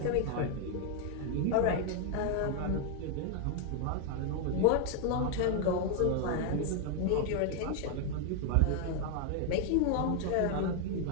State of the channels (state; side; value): different; both; correlation 0.00